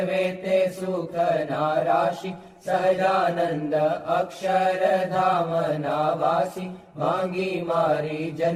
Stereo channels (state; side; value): identical; both; correlation 1.00